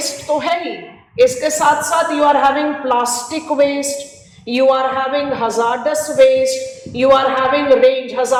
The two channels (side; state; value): both; identical; correlation 1.00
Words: तो है ही, इसके साथ साथ you are having plastic waste, you are having hazardous waste, you are having range,